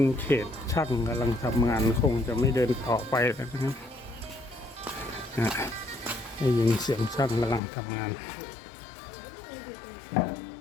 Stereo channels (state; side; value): drops out; right; at 7.6 s